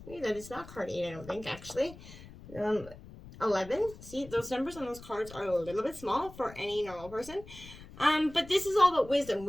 is not card 8, I don't think, actually. 11. See, those numbers on those cards are a little bit small for any normal person. But this is all about wisdom,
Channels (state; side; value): noise; left; rumble, 17 dB below the sound